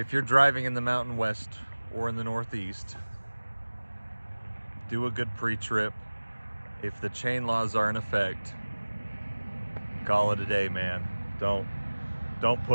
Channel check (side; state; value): both; inverted; correlation -1.00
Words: you're driving in the Mountain West or in the Northeast, do a good pre-trip. If the chain laws are in effect, call it a day, man. Don't